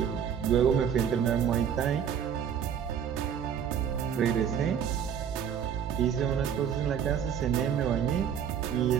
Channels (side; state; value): left; quieter; 8.3 dB